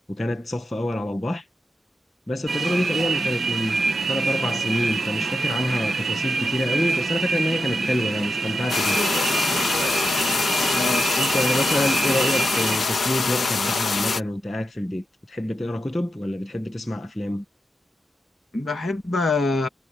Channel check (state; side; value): normal; both; correlation 0.87